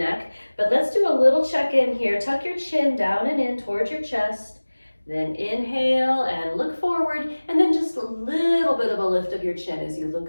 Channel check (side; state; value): both; inverted; correlation -1.00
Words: But let's do a little check-in here. Tuck your chin down and in towards your chest. Then inhale and look forward, and then just a little bit of a lift of your chin as you look